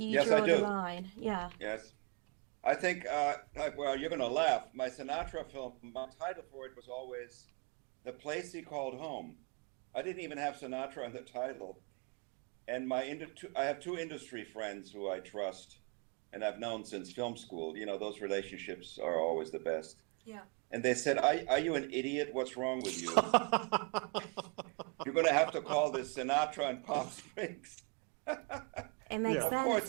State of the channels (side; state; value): left; quieter; 34.8 dB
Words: you Yes, draw I do. the line? Yeah. Yes. I think, well, you're going to laugh. My Sinatra film, my title for it was always The Place He Called Home. I didn't even have Sinatra in the title. And I have 2 industry friends who I trust and I've known since film school. Those relationships are always the best. Yeah. And they said, are you an idiot? What's wrong with you? You're going to have to call this Sinatra and Palm Springs. It makes Yeah. sense, Of course, it